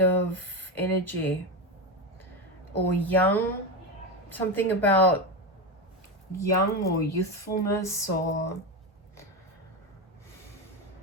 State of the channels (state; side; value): normal; both; correlation 0.15